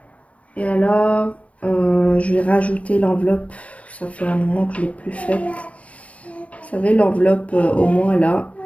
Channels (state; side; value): late; right; 0.065 ms